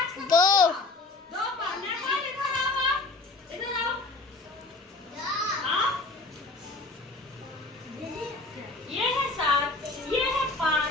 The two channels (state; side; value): quieter; right; 3.2 dB